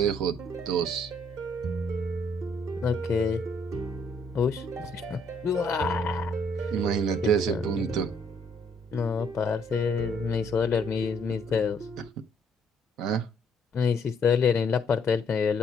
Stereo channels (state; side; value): normal; both; correlation 0.67